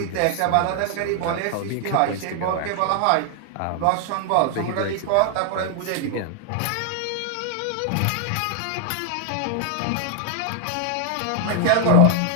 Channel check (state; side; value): different; both; correlation 0.00